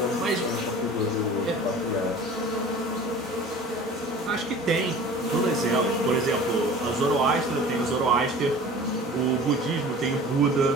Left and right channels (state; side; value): normal; both; correlation 0.42